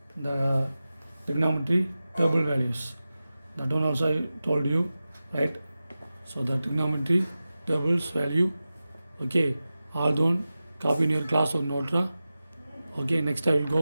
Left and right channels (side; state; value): both; inverted; correlation -0.94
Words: the trigonometry table values. That one also I told you, right? So the trigonometry tables value, okay, all done, copy in your class or note. Okay, next I will